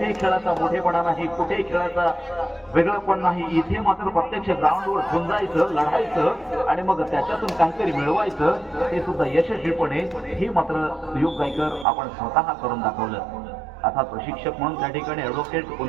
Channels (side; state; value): left; drops out; at 11.9 s